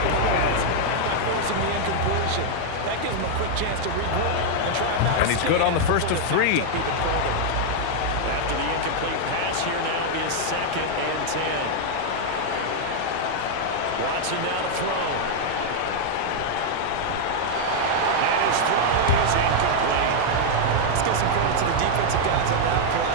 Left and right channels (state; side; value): different; both; correlation 0.00